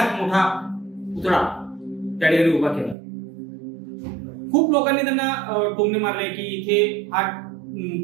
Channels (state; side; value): drops out; left; at 3.0 s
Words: मोठा पुतळा त्या ठिकाणी उभा केला. खूप लोकांनी त्यांना टोमणे मारले की इथे हा